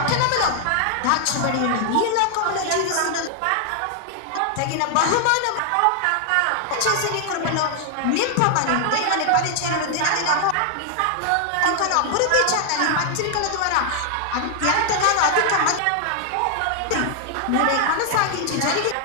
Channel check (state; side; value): different; both; correlation 0.00